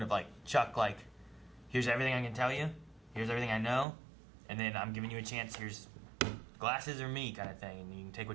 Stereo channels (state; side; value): drops out; left; at 3.9 s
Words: of, like, Chuck, like, here's everything I can tell you, here's everything I know, and then I'm giving you a chance, here's glasses or me kind of thing, and you can take